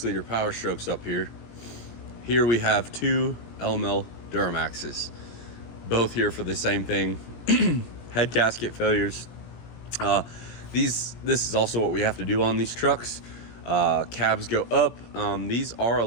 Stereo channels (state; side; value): late; right; 17 ms